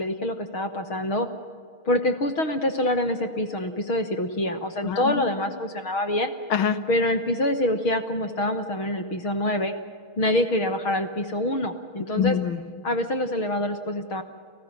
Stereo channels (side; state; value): right; late; 6.4 ms